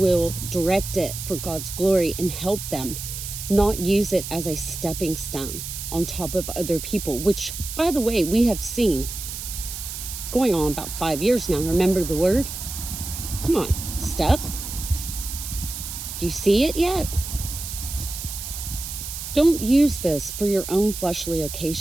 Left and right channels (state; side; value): noise; right; hiss, 8 dB below the sound